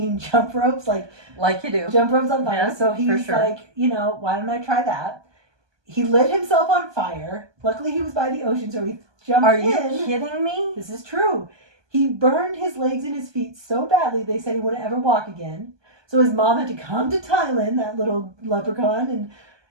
jump ropes, like Like you do. jump ropes on fire. Yeah, So he's sure. like, why don't I try that? He lit himself on fire. Luckily, he was by the ocean, so he jumped Are in. you kidding me? This is true. He burned his legs and his feet so badly they said he wouldn't ever walk again. So his mom had to come to Thailand, that little leprechaun, and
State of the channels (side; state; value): left; late; 1.2 ms